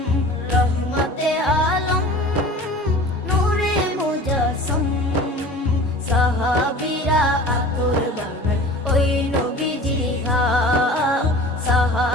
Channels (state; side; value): normal; both; correlation 0.41